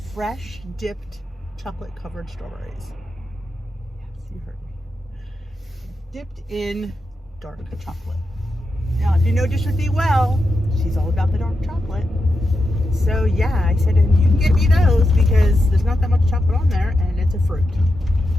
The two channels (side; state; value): both; normal; correlation 0.88